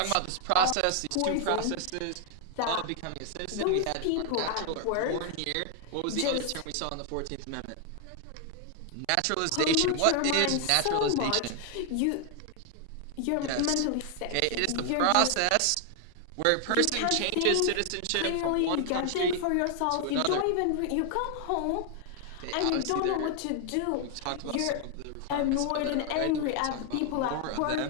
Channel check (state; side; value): different; both; correlation 0.00